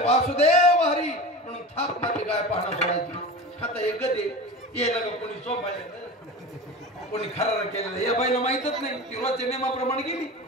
वासुदेव हरी म्हणून थाप मारली गाय पाहणं सोडायची. आता एक गदे यायला का कोणी चोपायला, कोणी खरार केलेलं या बाईला माहितच नाही. ती रोजच्या नियमाप्रमाणे गेली.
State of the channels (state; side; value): normal; both; correlation 0.31